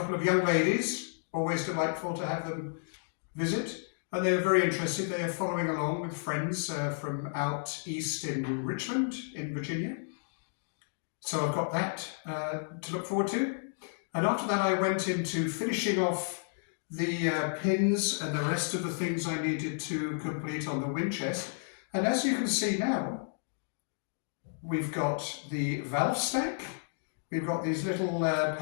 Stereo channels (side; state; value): right; silent; digital silence